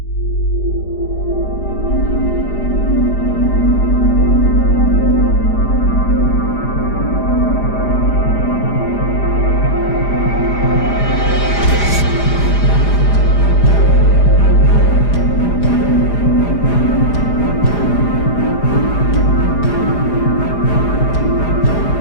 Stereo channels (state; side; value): late; right; 4.9 ms